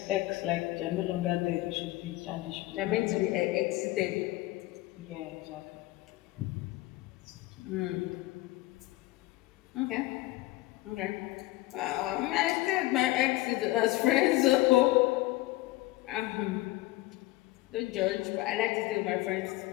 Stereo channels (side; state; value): right; quieter; 18.5 dB